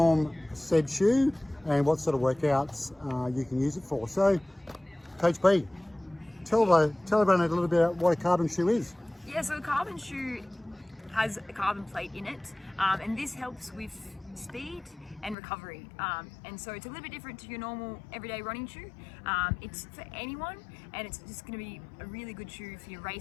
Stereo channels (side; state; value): right; drops out; at 15.4 s